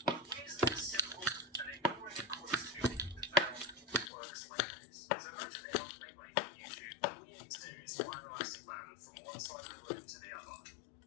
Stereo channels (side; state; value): right; drops out; at 4.1 s